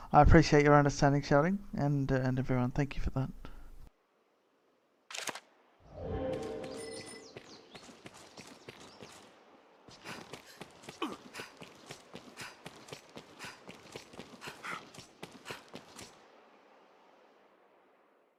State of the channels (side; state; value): both; identical; correlation 1.00